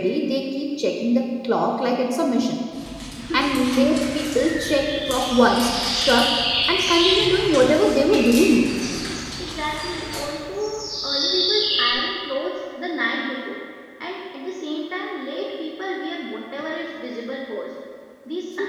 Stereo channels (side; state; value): both; identical; correlation 1.00